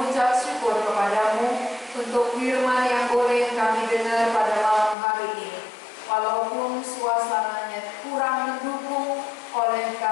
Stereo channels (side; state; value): right; drops out; at 5.0 s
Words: syukur kepadamu untuk firman yang boleh kami dengar pada malam hari ini. Walaupun suasananya kurang mendukung oleh